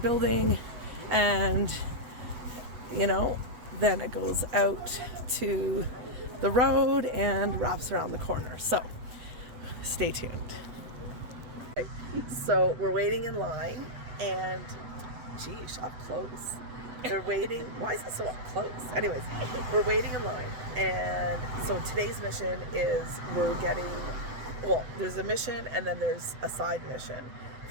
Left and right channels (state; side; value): late; left; 8.0 ms